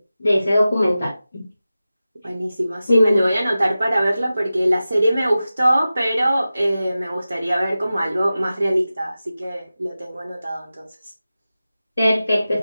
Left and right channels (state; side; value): inverted; both; correlation -0.95